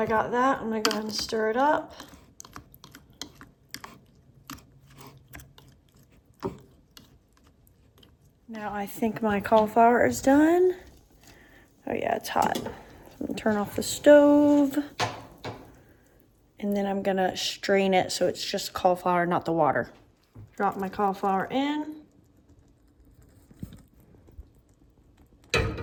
got that, I'm gonna go ahead and stir it up. Now I think my cauliflower is done. Oh yeah, it's hot. So I'm gonna turn off the stove. And then I'm gonna strain it so it's just cauliflower, not the water. Drop my cauliflower in.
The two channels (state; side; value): identical; both; correlation 1.00